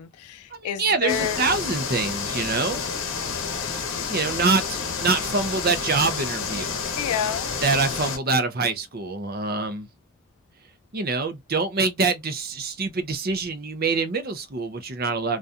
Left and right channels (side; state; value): both; normal; correlation 0.09